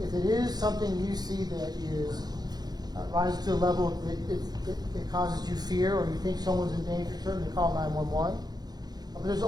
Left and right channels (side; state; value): left; late; 0.19 ms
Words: If it is something you see that is rises to a level that it causes you fear, or you think someone's in danger, certainly call 911. But there's